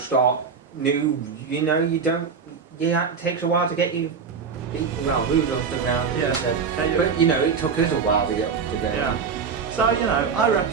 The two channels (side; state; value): left; quieter; 5.9 dB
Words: new, you know, you don't. Yeah, it takes a while to get you. Moved off the ground. as you Yeah. said. Okay, But you know, it took us a while to get off the ground. Yeah. So you know, I